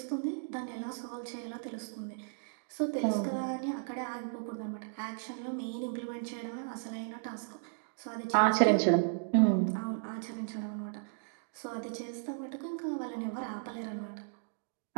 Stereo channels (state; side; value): silent; left; digital silence